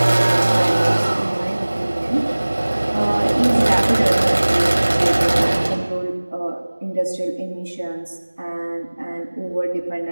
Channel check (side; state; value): both; inverted; correlation -1.00